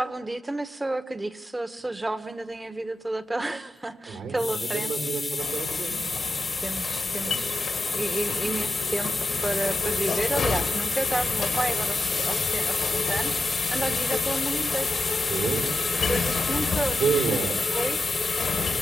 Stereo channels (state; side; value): normal; both; correlation 0.90